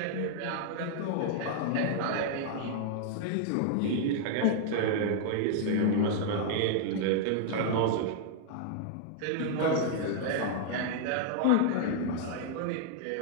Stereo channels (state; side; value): different; both; correlation -0.01